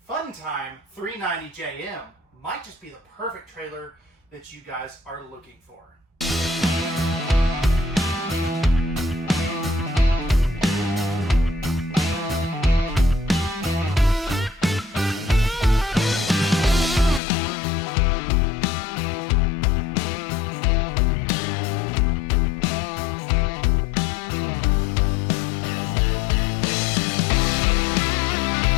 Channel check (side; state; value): right; drops out; at 17.2 s